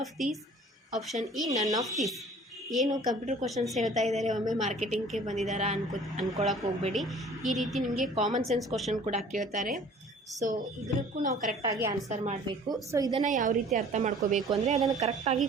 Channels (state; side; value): normal; both; correlation 0.50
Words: of these, option E ನನ್ of these. ಏನು computer questions ಹೇಳ್ತಾ ಇದ್ದಾರೆ, ಒಮ್ಮೆ ಮಾರ್ಕೆಟಿಂಗ್ಗೆ ಬಂದಿದ್ದಾರಾ ಅನ್ಕೊಳಕ್ಕೆ ಹೋಗಬೇಡಿ. ಈ ರೀತಿ ನಿಮಗೆ common sense question ಕೂಡ ಕೇಳ್ತಾರೆ. ಸೊ ಇದಕ್ಕೂ ನಾವು ಕರೆಕ್ಟಾಗಿ ಆನ್ಸರ್ ಮಾಡಬೇಕು. ಸೊ ಇದನ್ನು ಯಾವ ರೀತಿ ಅರ್ಥ ಮಾಡ್ಕೋಬೇಕು ಅಂದರೆ ಅದನ್ನು ಕರೆಕ್ಟಾಗಿ